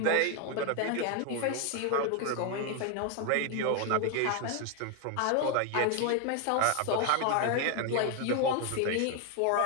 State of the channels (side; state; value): both; different; correlation 0.01